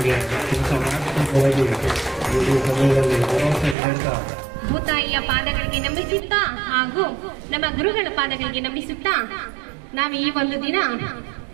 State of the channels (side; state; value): left; drops out; at 3.8 s